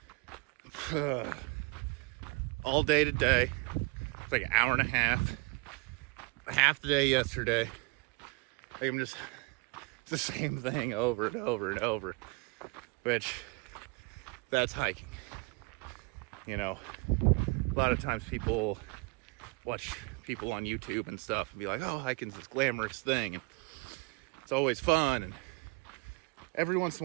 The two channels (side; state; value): left; quieter; 27.3 dB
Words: all day today, it's like an hour and a half the day yesterday. Like it's the same thing over and over and over. Which, that's hiking. You know, a lot of times people watch people on YouTube and stuff and be like, oh, hiking's this glamorous thing. And it's always fun. And every once in